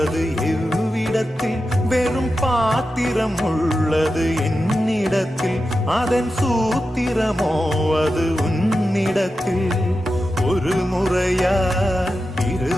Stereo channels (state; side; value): normal; both; correlation 0.91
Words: எவ்விடத்தில் வெறும் பாத்திரம் உள்ளது என்னிடத்தில் அதன் சூத்திரமோ அது உன்னிடத்தில் ஒரு முறையா